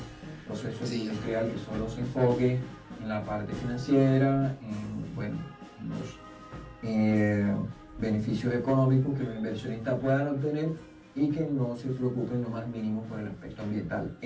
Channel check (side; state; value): both; identical; correlation 1.00